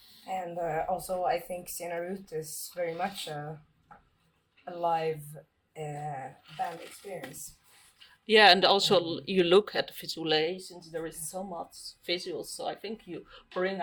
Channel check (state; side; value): identical; both; correlation 1.00